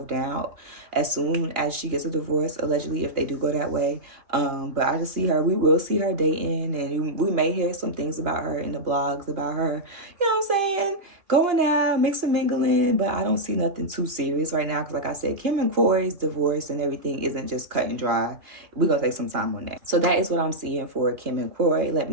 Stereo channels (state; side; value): late; left; 3.0 ms